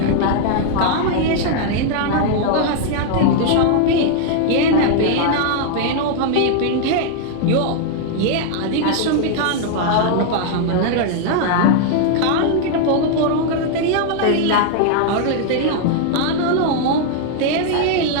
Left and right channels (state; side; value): different; both; correlation 0.00